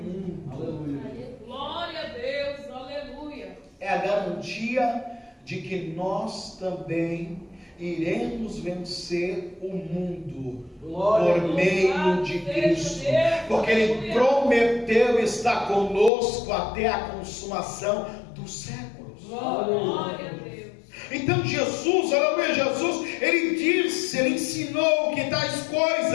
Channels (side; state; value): right; drops out; at 16.1 s